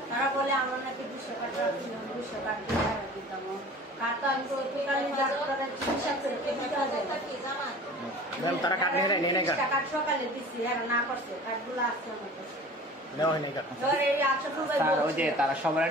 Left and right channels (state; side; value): normal; both; correlation 0.42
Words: তারা বলে আমরা নাকি 200 কার্ড রাখছি, 200 কার্ড দিয়ে দিতাম। কার্ড তো আমি তো টোটালি ডাক্তারের চিকিৎসা করে দিতে হবে। ম্যাম তারা কার্ড নিয়ে নেয় না, কার্ড সকালে দিচ্ছি, আর না করছে কার্ডগুলো আসছে আমার কাছে। নেওয়া হয়নি কার্ড। এবার এই 800 রুপায় স্যার ওই যে তারা সবাই